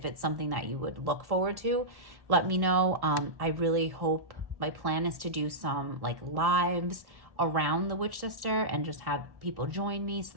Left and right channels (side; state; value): left; late; 1.1 ms